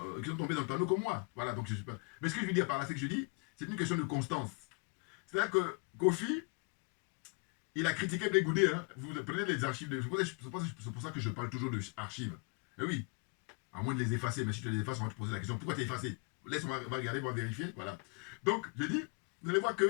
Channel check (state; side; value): quieter; right; 34.5 dB